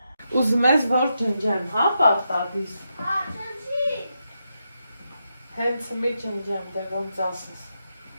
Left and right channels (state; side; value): inverted; both; correlation -0.84